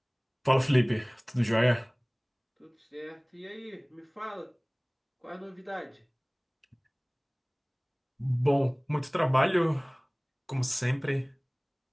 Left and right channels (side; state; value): both; identical; correlation 1.00